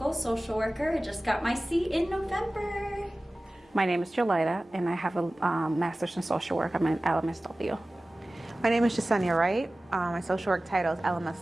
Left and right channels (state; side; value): normal; both; correlation 0.97